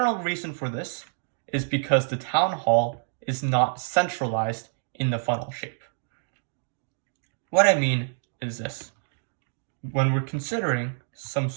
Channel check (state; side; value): silent; left; digital silence